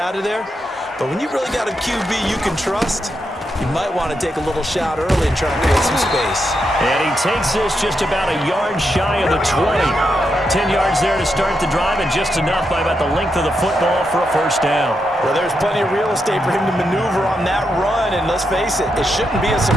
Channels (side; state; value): both; normal; correlation 0.83